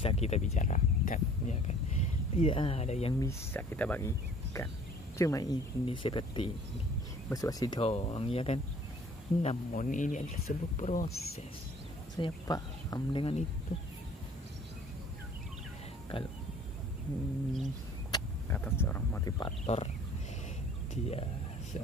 kita bicarakan, ya kan? Tidak ada yang bisa kita bagikan. Cuma ini seperti ini, basa-basi doang, ya kan? Namun ini adalah sebuah proses. Saya paham dengan itu. Kalau kata seorang motivator, dia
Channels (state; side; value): normal; both; correlation 0.53